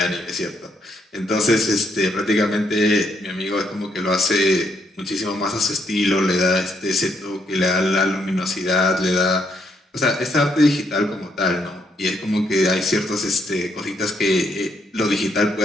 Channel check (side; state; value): both; normal; correlation 0.74